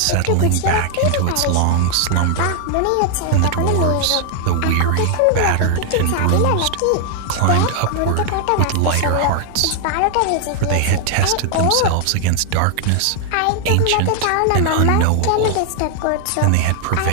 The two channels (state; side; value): different; both; correlation 0.00